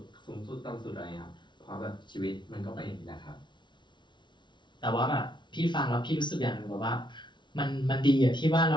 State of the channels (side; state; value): right; late; 0.23 ms